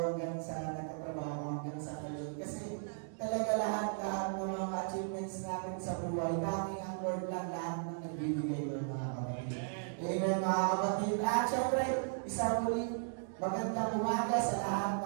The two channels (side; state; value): left; silent; digital silence